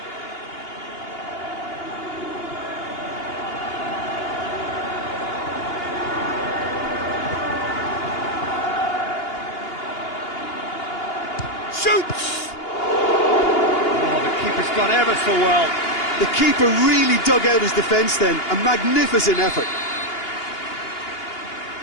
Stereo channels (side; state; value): right; late; 2.8 ms